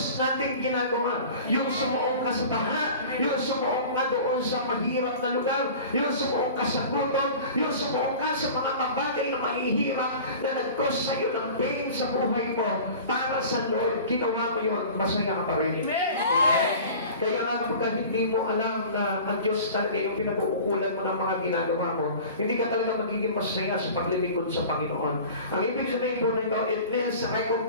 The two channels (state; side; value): inverted; both; correlation -0.40